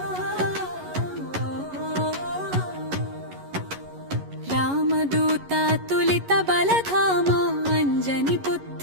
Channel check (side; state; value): left; late; 11 ms